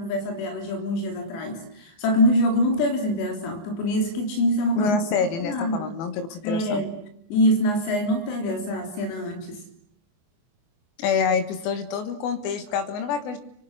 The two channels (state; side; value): late; right; 24 ms